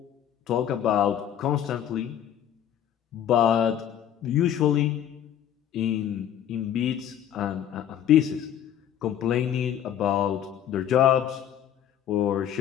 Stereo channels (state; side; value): quieter; right; 10.1 dB